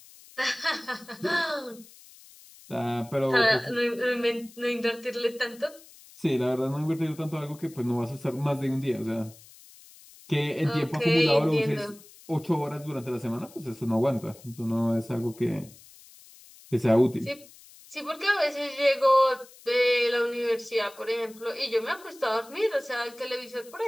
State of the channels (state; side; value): noise; left; hiss, 22 dB below the sound